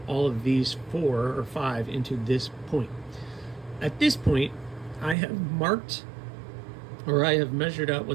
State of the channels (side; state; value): left; drops out; at 5.2 s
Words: all of these 4 or 5 into this point. At this point, I have marked, or I have measured out